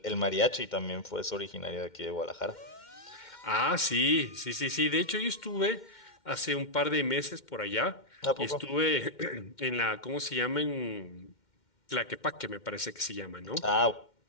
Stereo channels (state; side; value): late; right; 2.1 ms